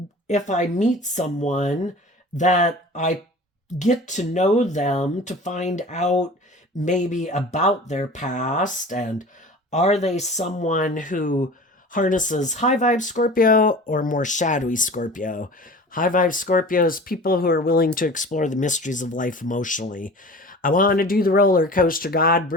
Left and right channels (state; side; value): normal; both; correlation 0.39